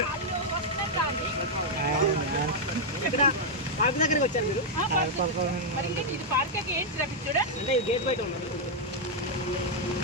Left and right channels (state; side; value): normal; both; correlation -0.03